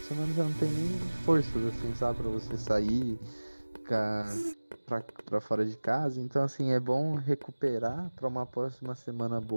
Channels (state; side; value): inverted; both; correlation -1.00